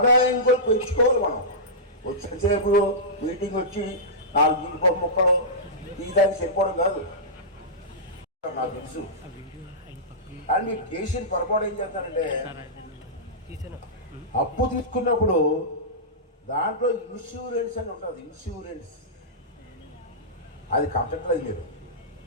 కూడా పెంచుకోవాలి మనం. వచ్చేసేపు మీటింగ్ వచ్చి 4 జీడిపప్పు ముక్కలు తీయడానికి సరిపోవడం కాదు, నాకు తెలుసు. కానీ మీరు చేసిన పొరపాటు ఏం చేస్తారంటే, అప్పు తీసుకున్నప్పుడు దాంట్లో ఇన్సూరెన్స్ అని ఉంటుంది, ఇన్సూరెన్స్ అది కట్టట్లేదు మీరు.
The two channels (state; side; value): normal; both; correlation -0.16